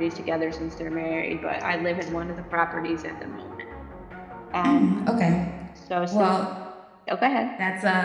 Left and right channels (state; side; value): identical; both; correlation 1.00